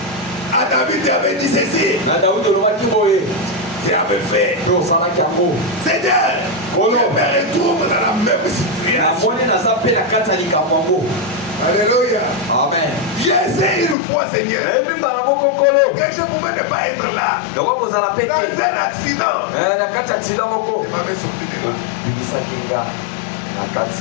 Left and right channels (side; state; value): right; drops out; at 14.0 s